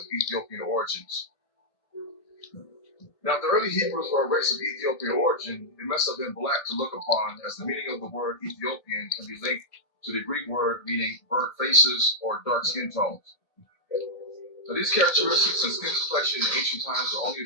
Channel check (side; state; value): right; late; 1.7 ms